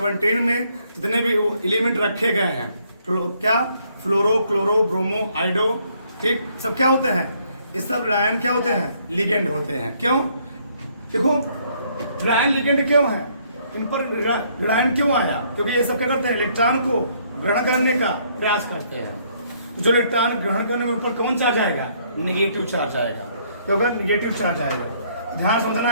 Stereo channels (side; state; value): both; inverted; correlation -0.67